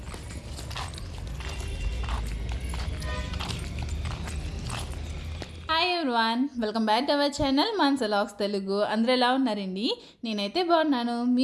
hi everyone, welcome back to our channel Manasa vlogs Telugu. అందరూ ఎలా ఉన్నారండి? నేనైతే బాగున్నాను.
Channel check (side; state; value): both; identical; correlation 1.00